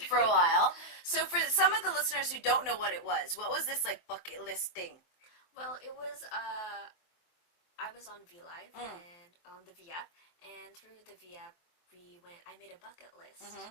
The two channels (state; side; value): late; right; 23 ms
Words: For a while. So for some of the listeners who don't know what was this like bucket list thing? Well, it was, I was on VLive and on the V app, and through the V app, I made a bucket list